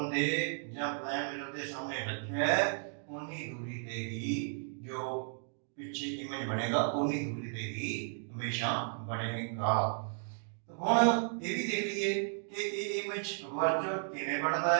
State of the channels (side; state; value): left; silent; 55 dB below the other